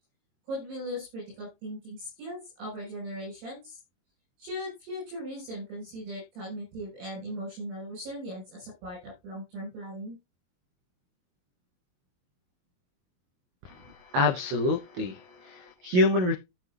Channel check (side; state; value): left; late; 22 ms